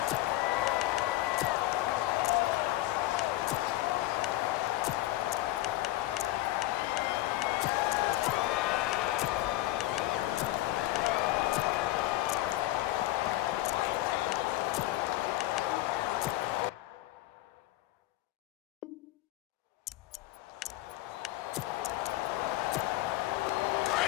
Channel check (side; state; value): right; quieter; 16.9 dB